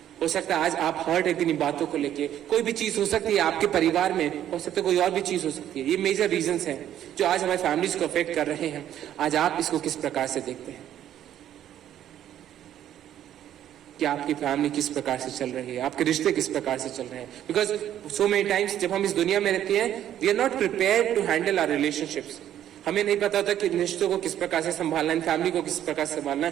हो सकता है आज आप हर्ट है किन्हीं बातों को लेके। कोई भी चीज हो सकती है आपके परिवार में, हो सकता है कोई और भी चीज हो सकती है। ये मेजर रीजंस हैं जो आज हमारी फैमिलीज को अफेक्ट कर रहे हैं। आज आप इसको किस प्रकार से देखते हैं कि आपकी फैमिली किस प्रकार से चल रही है, आपके रिश्ते किस प्रकार से चल रहे हैं? बिकॉज सो मेनी टाइम्स जब हम इस दुनिया में रहते हैं, we are not prepared to handle our relationships. हमें नहीं पता होता कि रिश्तों को किस प्रकार से संभालना है, फैमिली को किस प्रकार से संभालना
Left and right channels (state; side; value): quieter; left; 11.2 dB